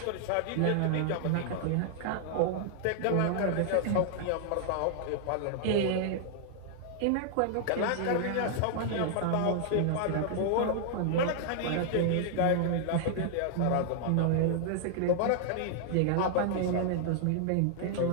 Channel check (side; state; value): both; different; correlation -0.01